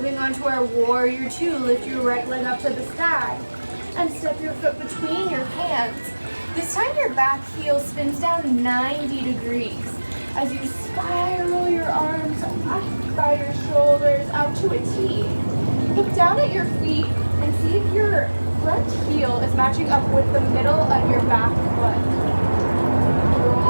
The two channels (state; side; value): inverted; both; correlation -1.00